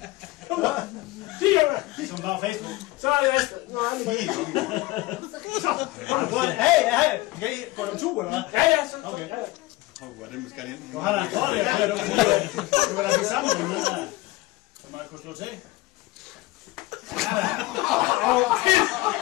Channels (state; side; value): quieter; right; 19.5 dB